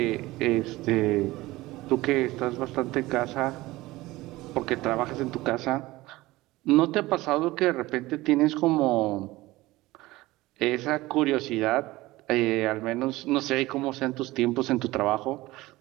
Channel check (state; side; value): quieter; left; 19.0 dB